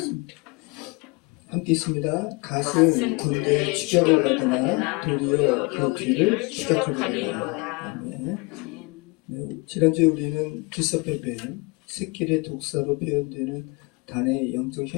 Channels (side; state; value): right; quieter; 27.5 dB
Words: 함께 있습니다. 갓은 군대의 추격을 받으나 도리어 그 뒤를 추격하리라. 아멘. 네, 지난주에 우리는 기섭배뱀, 새끼의 독사로 표현되는 단의 영적